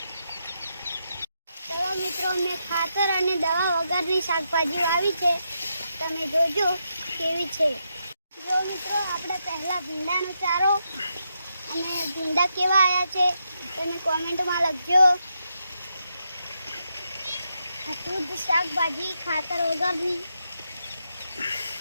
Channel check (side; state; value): both; inverted; correlation -0.82